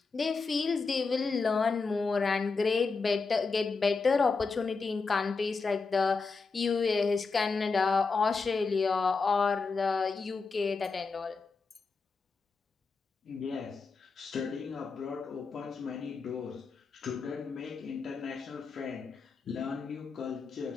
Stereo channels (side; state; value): right; quieter; 4.4 dB